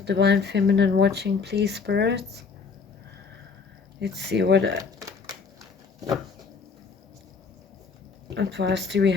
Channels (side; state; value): right; quieter; 5.2 dB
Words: feminine watching, please, spirits. Let's see what advice do we